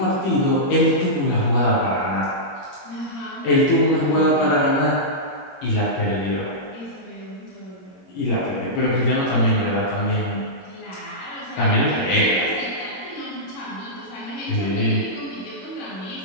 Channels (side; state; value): right; late; 21 ms